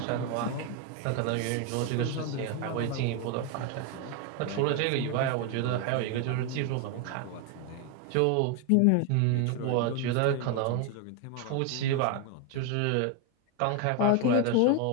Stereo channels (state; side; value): different; both; correlation 0.01